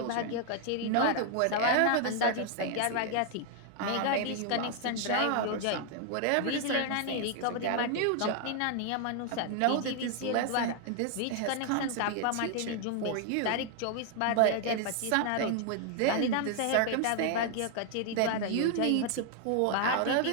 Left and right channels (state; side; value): different; both; correlation 0.00